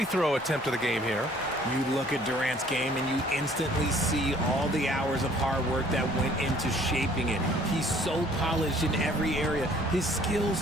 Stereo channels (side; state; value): both; normal; correlation 0.57